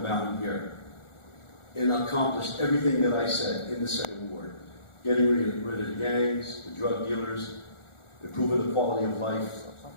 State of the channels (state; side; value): late; right; 1.4 ms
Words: in here and accomplished everything that I said in the Second Ward. Getting rid of the gangs, the drug dealers, improving the quality of life,